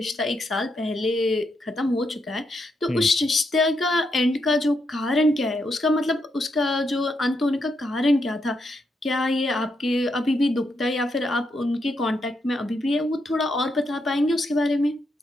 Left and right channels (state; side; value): normal; both; correlation 0.80